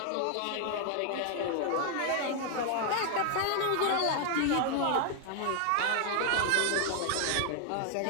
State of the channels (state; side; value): different; both; correlation 0.00